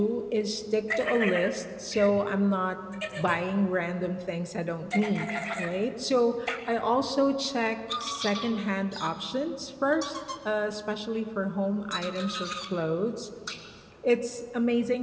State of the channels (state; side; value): identical; both; correlation 1.00